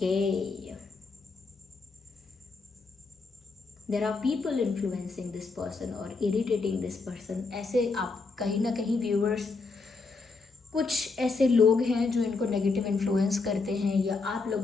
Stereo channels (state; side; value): quieter; right; 4.1 dB